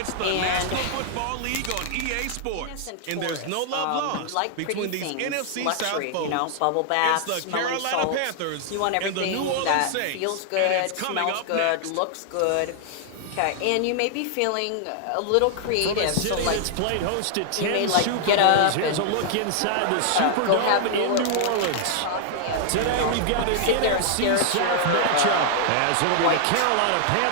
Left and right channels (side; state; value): both; different; correlation -0.01